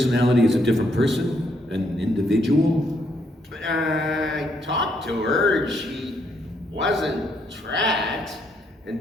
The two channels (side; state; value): both; normal; correlation 0.73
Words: is a different person? An individual? I talked to her. She wasn't tracked